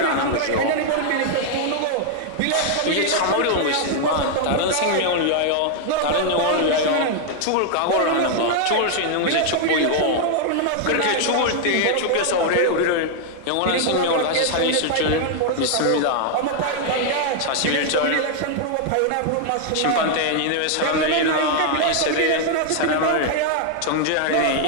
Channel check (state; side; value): different; both; correlation 0.00